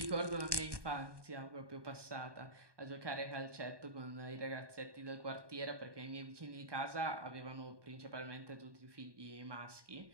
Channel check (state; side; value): late; left; 1.2 ms